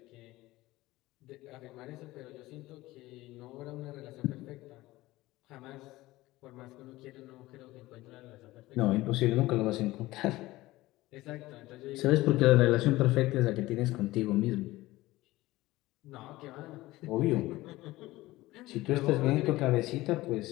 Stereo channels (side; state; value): right; quieter; 18.2 dB